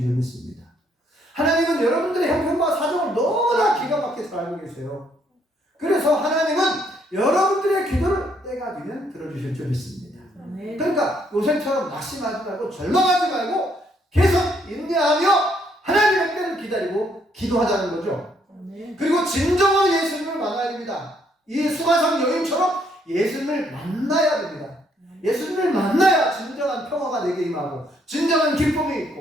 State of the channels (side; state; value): both; normal; correlation 0.70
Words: 줄 믿습니다. 하나님은 여러분들의 형편과 사정을 너무나 기가 막히게 잘 알고 계세요. 그래서 하나님은 여러분들의 기도를 때가 되면 들어주실 줄 믿습니다. 그러니까 요셉처럼 낙심하지 말고 절망하지 말고 계속 인내하며 하나님의 때를 기다리고 기도하자는 거죠. 그리고 진정한 예수님을 만나야 됩니다. 이 수가성 여인처럼 예수님을 만나야 됩니다. 예수님을 만나야 진정한 평화가 내게 임하고 진정한 기쁨이